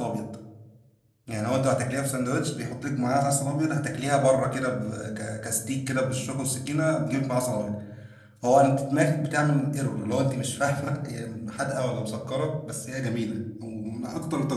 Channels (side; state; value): both; identical; correlation 1.00